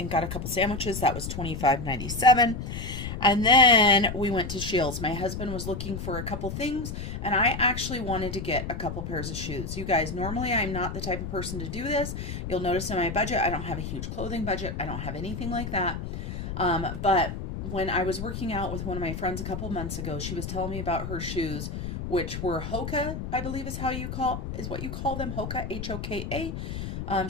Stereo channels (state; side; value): noise; left; rumble, 6 dB below the sound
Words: got a couple sandwiches. That was $25.97. And then we went to Shields. My husband was looking for a couple things, and I actually wanted to get a couple pairs of shoes. You guys, normally I'm not the type of person to do this. You'll notice in my budget, I don't have a huge clothing budget. I don't have anything like that. But when I was working out with one of my friends a couple months ago, she was telling me about her shoes, which were Hoka, I believe is what you call them, Hoka, Hoka.